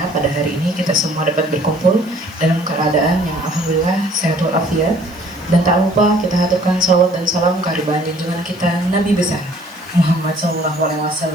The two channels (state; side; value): noise; right; hiss, 27 dB below the sound